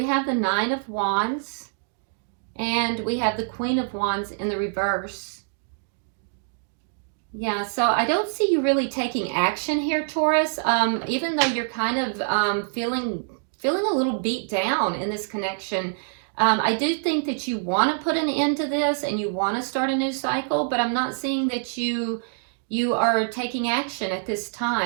have the Nine of Wands, and we have the Queen of Wands in the reverse. Yeah, so I don't see you really taking action here, Taurus, even though you're kind of feeling a little beat down in this connection. I do think that you want to put an end to this and you want to start a new cycle, but I'm not seeing that you are taking action at this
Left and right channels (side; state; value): left; silent; digital silence